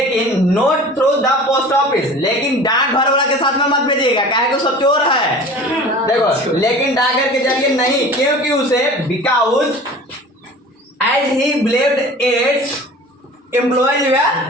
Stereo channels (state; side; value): normal; both; correlation 0.41